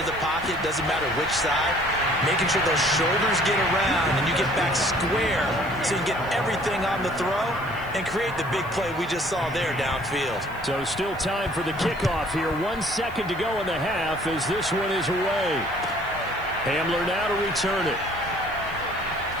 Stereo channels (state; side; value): noise; left; hiss, 25 dB below the sound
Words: the pocket, doesn't matter which side, making sure those shoulders get around and you get back square so you can get everything on the throw and create the big play we just saw there downfield. So still time for the kickoff here. 1 second to go in the half as this one is away. Hamler now to return it.